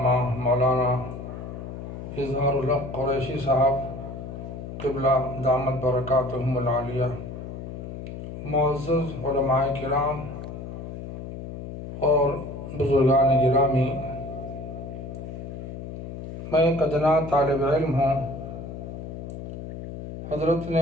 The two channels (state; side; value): noise; left; hum, 9 dB below the sound